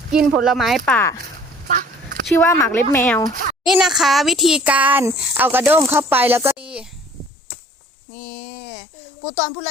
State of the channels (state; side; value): drops out; right; at 7.3 s